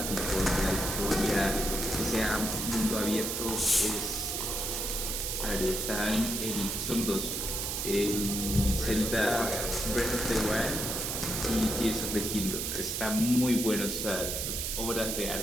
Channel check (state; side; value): noise; right; hiss, 2 dB below the sound